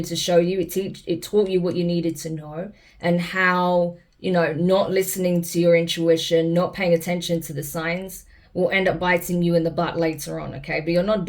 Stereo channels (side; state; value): both; identical; correlation 1.00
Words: to show you. It taught you what you needed to know and how, you know, not listening to your intuition, not paying attention to the signs will end up biting you in the butt later on, okay? But you're not